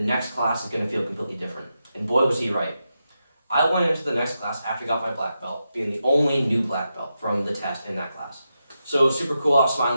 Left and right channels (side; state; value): both; inverted; correlation -0.87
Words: class is going to feel completely different. And boy, was he right. I went into the next class after I got my black belt, being the only new black belt from the test in that class. So it was super cool. I was